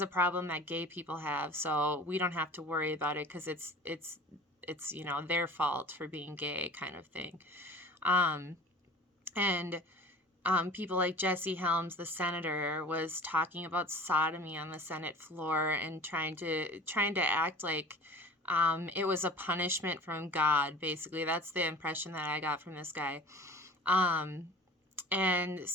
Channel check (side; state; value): both; normal; correlation 0.43